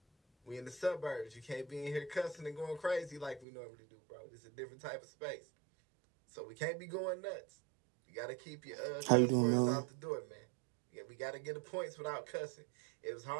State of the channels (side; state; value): left; drops out; at 3.5 s